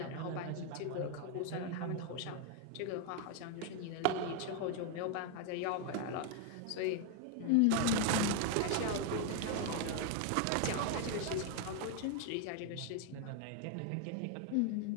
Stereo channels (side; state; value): both; different; correlation 0.00